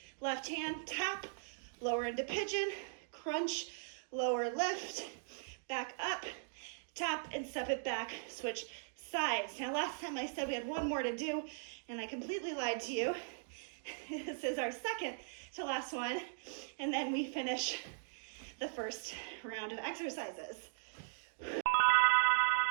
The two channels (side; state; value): left; silent; digital silence